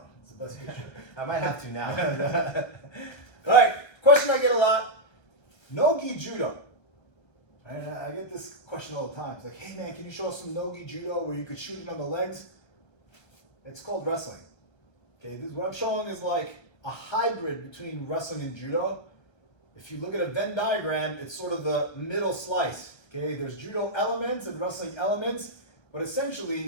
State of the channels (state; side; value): late; right; 1.3 ms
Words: It's the best picture. I might have to now. Alright, question I get a lot. No Gi Judo. And I get this question all the time. It's like, hey man, can you show us some no Gi Judo where you could shoot it on the legs? It's called wrestling. Okay, this what I'm showing is like a hybrid between wrestling and judo. If you look at a Venn diagram, it's sort of the middle slice. Okay, there's judo elements and wrestling elements, but